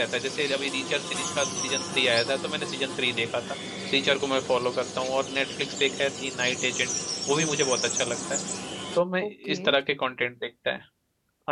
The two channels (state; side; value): identical; both; correlation 1.00